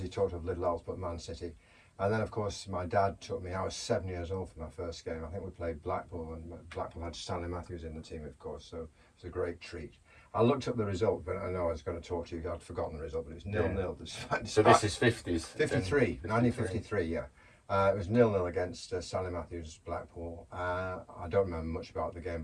talked of little else but Man City. And then, of course, my dad took me. I was 7 years old for my first game. I think we played Blackpool, and Blackpool had Stanley Matthews in the team, of course. So it was a great treat. I looked up the result, but I know I was going to talk to you. I'd forgotten the result, but it was 0-0. So this is 50s? 53, 1953, yeah. It was 0-0 against Stanley Matthews, Blackpool. I don't remember much about the game,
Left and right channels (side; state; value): both; identical; correlation 1.00